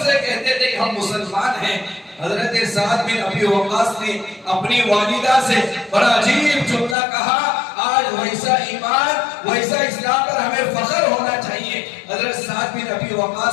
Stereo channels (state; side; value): drops out; right; at 7.0 s